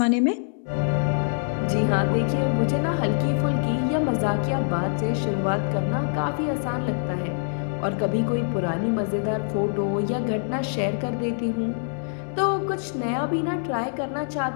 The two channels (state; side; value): silent; right; digital silence